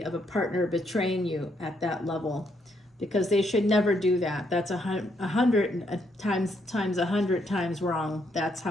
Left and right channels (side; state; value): both; normal; correlation 0.74